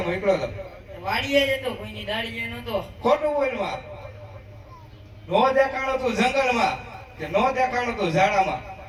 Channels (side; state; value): both; identical; correlation 1.00